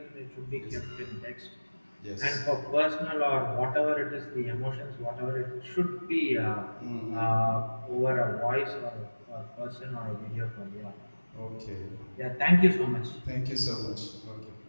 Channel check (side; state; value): both; inverted; correlation -1.00